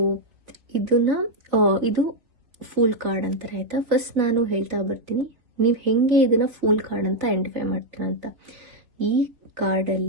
ಇದು ಫೂಲ್ ಕಾರ್ಡ್ ಅಂತಾರೆ ಆಯ್ತಾ. ಫಸ್ಟ್ ನಾನು ಹೇಳ್ತಾ ಬರ್ತೀನಿ, ನೀವು ಹೆಂಗೆ ಇದನ್ನ ಫೂಲ್ ಕಾರ್ಡ್ ಅಂತ ಐಡೆಂಟಿಫೈ ಮಾಡ್ತೀರಾ ಅಂತ. ಈ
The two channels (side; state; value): left; late; 3.5 ms